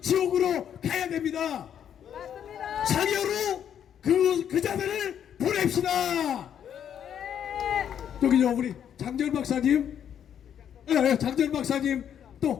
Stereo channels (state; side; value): quieter; right; 9.1 dB